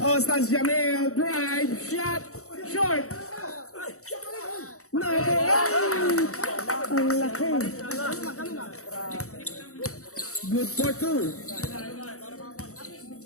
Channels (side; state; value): right; late; 0.65 ms